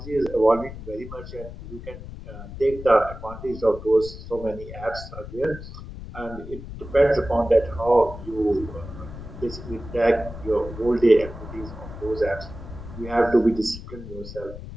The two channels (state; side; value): noise; left; rumble, 12 dB below the sound